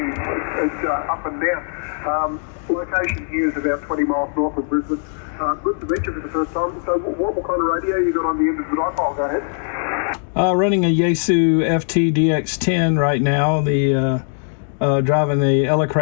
it's up and down. Location here is about 20 miles north of Brisbane. Good to meet you for the first time. So what kind of radio you got on the end of the dipole? Go ahead. Running a Yaesu FT-DX10 right now. Driving the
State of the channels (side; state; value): right; silent; digital silence